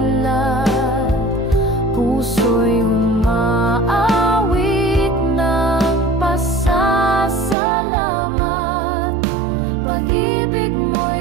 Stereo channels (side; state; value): left; drops out; at 7.6 s